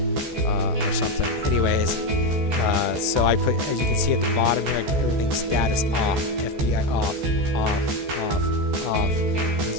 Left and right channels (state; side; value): late; left; 14 ms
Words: something. Anyways, so I put, as you can see at the bottom here, everything's status off, FBI off, off, off. You